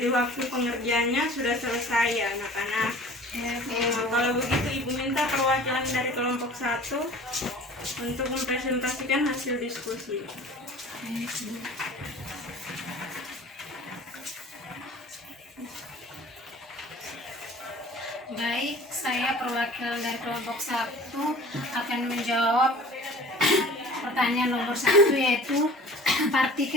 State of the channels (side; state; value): both; normal; correlation 0.45